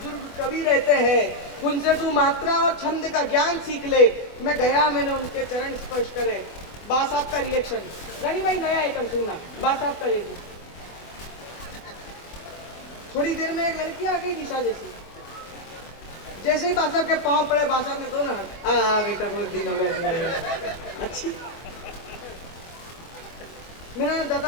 कवि रहते हैं, उनसे तू मात्रा और छंद का ज्ञान सीख ले। मैं गया, मैंने उनके चरण स्पर्श करे। बा साहब का रिएक्शन, रानी भाई नया आइटम सुनना, बा साहब का रिएक्शन। थोड़ी देर में एक लड़की आ गई निशा जैसी, जैसे ही बा साहब के पांव पड़े, बा साहब ने दोनों हाथ, बेटा बहुत दिन हो गए, अच्छी। मैंने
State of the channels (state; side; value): late; right; 24 ms